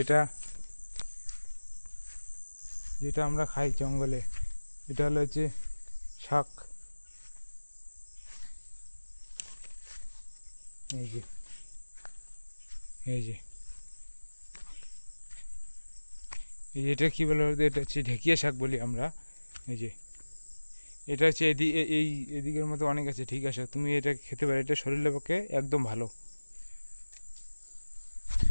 যেটা আমরা খাই জঙ্গলে। এটা হলো হচ্ছে শাক। এই যে, এই যে, এই যে, এটা কী বলে বলতো? এটা হচ্ছে ঢেকিয়া শাক বলি আমরা। এই যে, এটা হচ্ছে এই এদিকের মধ্যে অনেক আছে, ঠিক আছে, তুমি এটা খেতে পারো, এটা শরীরের পক্ষে একদম ভালো।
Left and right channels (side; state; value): both; inverted; correlation -1.00